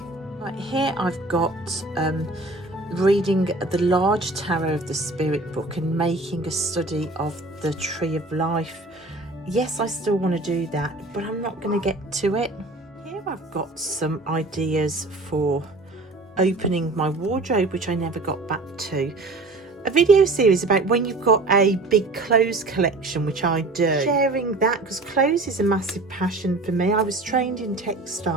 Right, here I've got reading the large tarot of the spirit book and making a study of the tree of life. Yes, I still want to do that, but I'm not going to get to it. Here I've got some ideas for opening my wardrobe, which I never got back to. A video series about when you've got a big clothes collection, which I do. Sharing that, because clothes is a massive passion for me. I was trained in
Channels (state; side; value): quieter; left; 3.0 dB